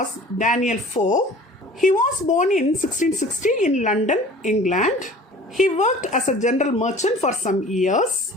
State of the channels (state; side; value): normal; both; correlation 0.45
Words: Daniel Defoe. He was born in 1660 in London, England. He worked as a general merchant for some years.